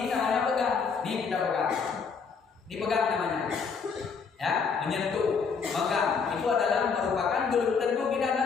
namanya pegang. Ini kita pegang. Dipegang namanya. Ya, menyentuh, megang, itu adalah merupakan belum tentu kita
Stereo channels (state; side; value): quieter; right; 5.6 dB